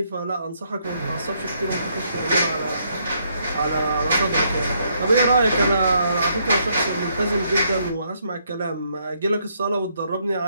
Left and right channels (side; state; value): both; inverted; correlation -0.73